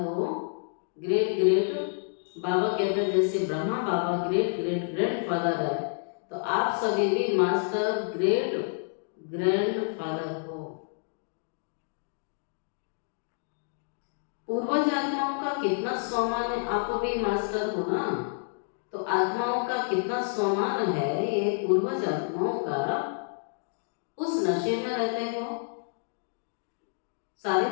ग्रेट ग्रेट बाबा कहते हैं जैसे ब्रह्मा बाबा ग्रेट ग्रेट ग्रैंडफादर है, तो आप सभी भी मास्टर ग्रेट ग्रैंडफादर हो। पूर्वज आत्माओं का कितना सम्मान है, आप भी मास्टर हो ना, तो आत्माओं का कितना सम्मान है ये पूर्वज आत्माओं का। उस नशे में रहते हो। सारे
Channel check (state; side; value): silent; right; digital silence